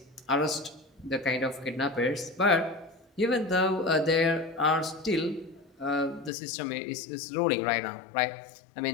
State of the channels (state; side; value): drops out; right; at 6.3 s